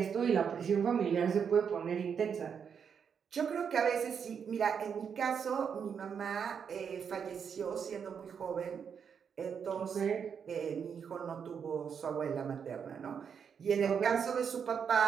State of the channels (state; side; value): quieter; left; 7.1 dB